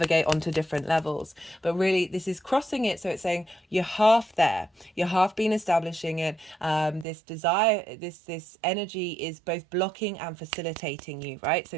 onto different levels. But really this is crossing it. So it's saying you're half there, you're half been establishing it. This desire, this energy is both blocking and facilitating you, right? So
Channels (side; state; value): left; drops out; at 7.1 s